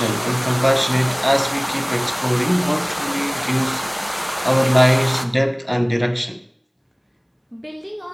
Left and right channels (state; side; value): identical; both; correlation 1.00